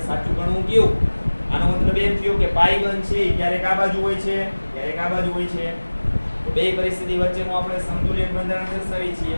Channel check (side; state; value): both; inverted; correlation -1.00